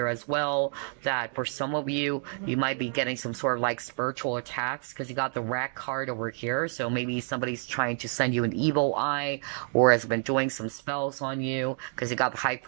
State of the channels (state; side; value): silent; left; 59 dB below the other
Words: as well that for some of you, you might be getting some sort of like spiritual attacks because you got the Rat card over here. So maybe somebody's trying to send you an evil eye or has been doing some spells on you because you got the High